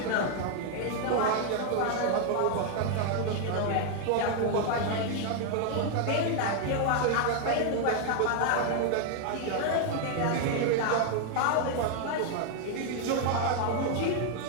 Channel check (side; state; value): both; different; correlation 0.00